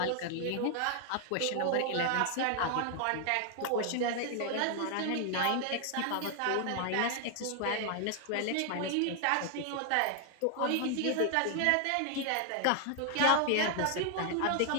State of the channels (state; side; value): different; both; correlation 0.00